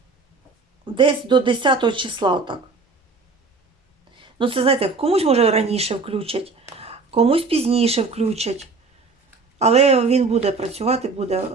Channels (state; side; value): quieter; left; 4.0 dB